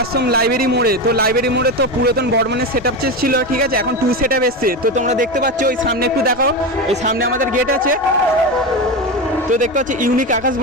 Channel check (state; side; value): normal; both; correlation 0.18